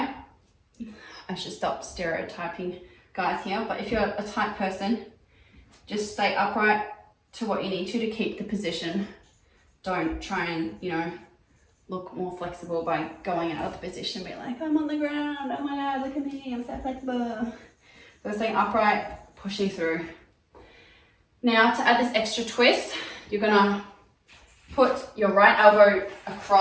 I should stop stereotyping guys here, but if you're a tight person, just stay upright to what you need to keep the position. Don't try and, look more flexible by going out of the position and be like, I'm on the ground, oh my God, look at me, I'm so flexible. So staying upright, pushing through. Now to add this extra twist, you're gonna put your right elbow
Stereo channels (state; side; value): identical; both; correlation 1.00